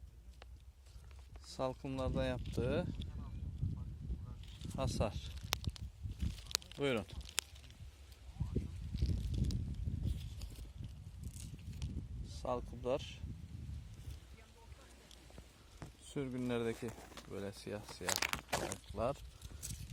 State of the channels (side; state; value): both; identical; correlation 1.00